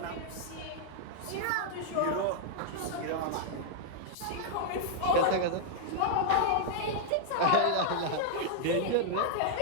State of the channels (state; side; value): different; both; correlation -0.01